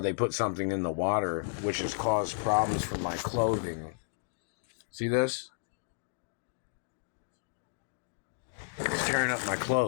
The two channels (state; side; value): silent; right; digital silence